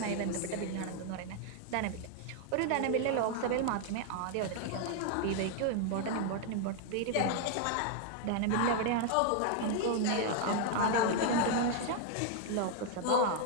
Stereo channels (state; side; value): different; both; correlation 0.00